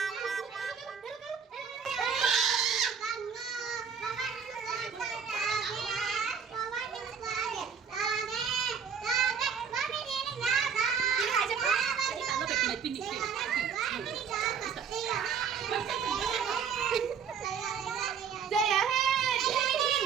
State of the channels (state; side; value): quieter; left; 6.8 dB